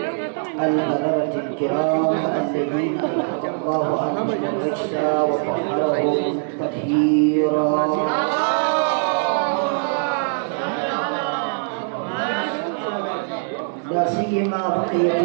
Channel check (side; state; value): left; silent; 63 dB below the other